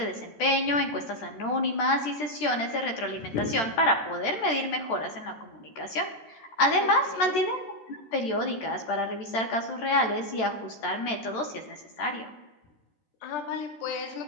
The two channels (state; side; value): late; right; 13 ms